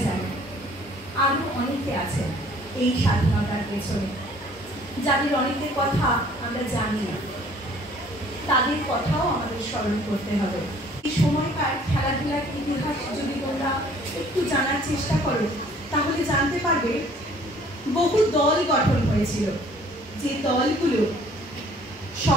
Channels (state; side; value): normal; both; correlation 0.56